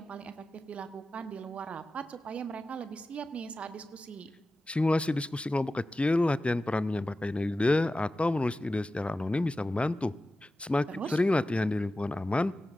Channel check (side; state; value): both; normal; correlation 0.94